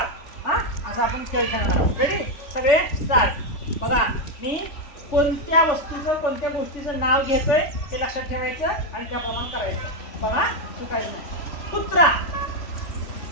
असं आपण खेळ खेळणार आहोत. रेडी? सगळे स्टार्ट. बघा, मी कोणत्या वस्तूचं कोणत्या गोष्टीचं नाव घेतोय हे लक्षात ठेवायचं आणि त्याप्रमाणे करायचं. बघा, चुकायचं नाही. कुत्रा.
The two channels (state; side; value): late; right; 3.4 ms